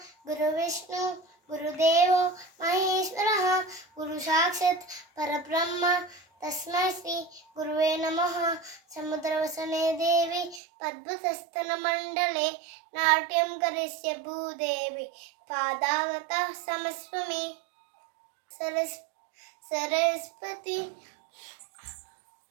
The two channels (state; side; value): drops out; left; at 10.6 s